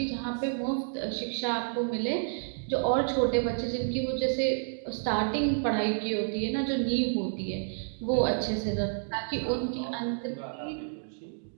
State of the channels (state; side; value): silent; left; digital silence